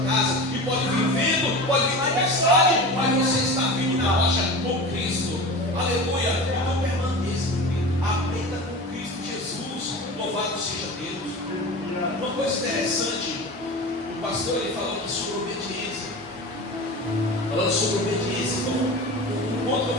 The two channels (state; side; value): normal; both; correlation 0.32